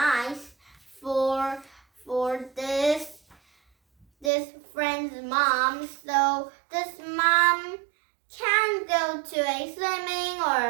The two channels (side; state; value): left; drops out; at 4.3 s